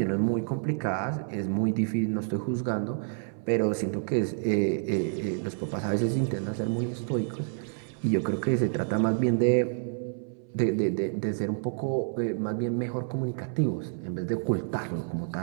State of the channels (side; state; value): left; silent; 59 dB below the other